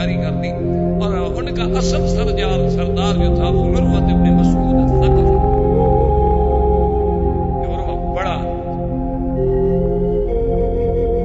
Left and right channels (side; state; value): both; identical; correlation 1.00